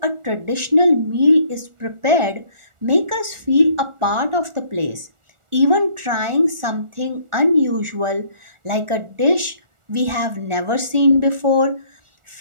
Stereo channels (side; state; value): left; late; 1.4 ms